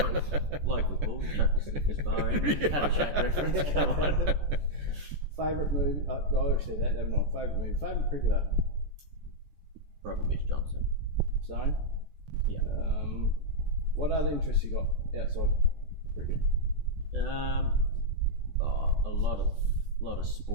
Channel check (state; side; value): late; left; 14 ms